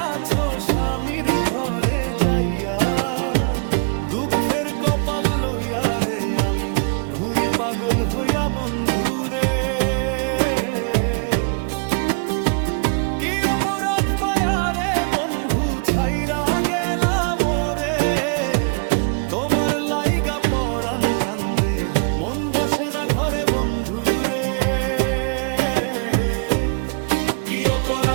আছো স্বামীর ঘরে যাইয়া, দুঃখের কপাল লইয়া রে আমি ঘুরি পাগল পাগল হইয়া বন্ধু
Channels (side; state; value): left; quieter; 39.5 dB